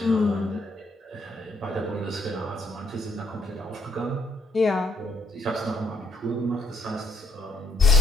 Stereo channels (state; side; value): normal; both; correlation 0.69